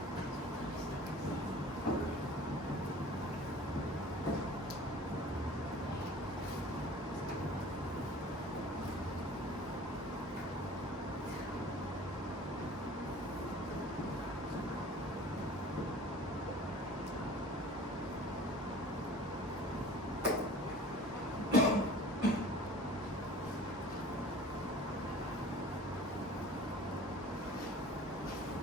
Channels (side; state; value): both; normal; correlation 0.45